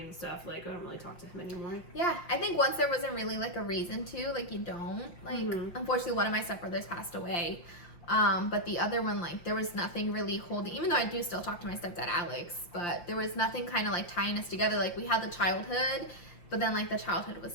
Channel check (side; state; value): right; late; 5.7 ms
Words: and stuff, like, I don't really talk to him anymore. Yeah, I think once there wasn't really, like, a reason to, like, you don't. Like, unfortunately, one of my stepbrothers passed away. But the other one, like, there was nothing really holding, even though I do still talk to my stepdad, Alex, but there was nothing kind of, like, tying us together. Like, we had the childhood, but then, like, the childhood was